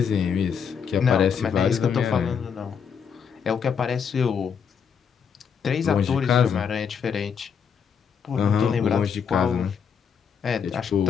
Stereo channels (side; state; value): right; quieter; 6.9 dB